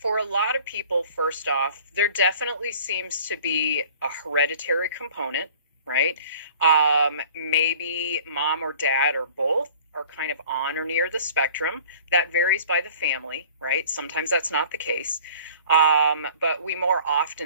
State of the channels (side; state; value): both; inverted; correlation -0.48